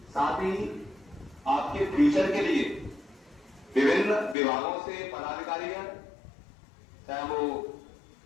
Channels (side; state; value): right; drops out; at 4.4 s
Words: साथ ही आपके फ्यूचर के लिए विभिन्न विभागों से पदाधिकारी हैं, चाहे वो